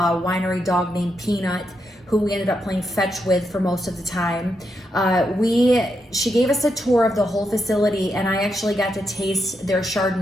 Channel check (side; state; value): both; normal; correlation 0.82